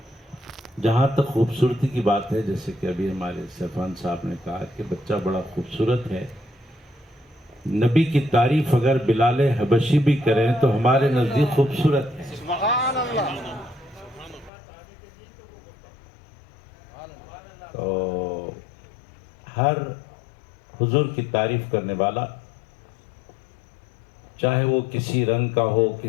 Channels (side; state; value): right; drops out; at 14.5 s